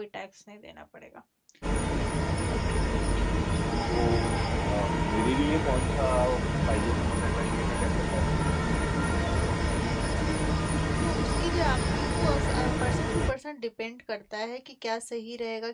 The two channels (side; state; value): both; identical; correlation 1.00